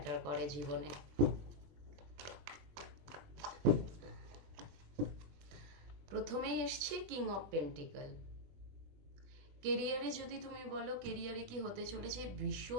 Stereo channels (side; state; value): left; late; 21 ms